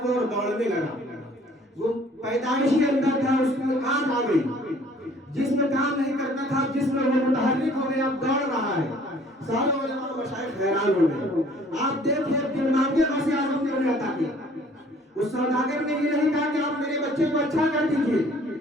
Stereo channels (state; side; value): normal; both; correlation 0.55